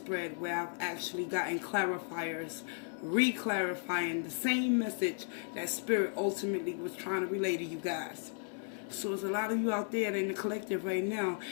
where I've actually gotten clarifiers, re-clarifying the same message that Spirit ultimately was trying to relay to you guys. So there's a lot of you out there in the collective right now,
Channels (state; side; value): silent; right; 54 dB below the other